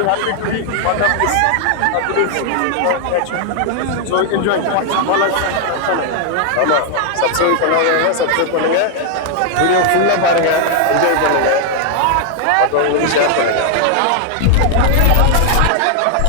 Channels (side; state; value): both; different; correlation 0.00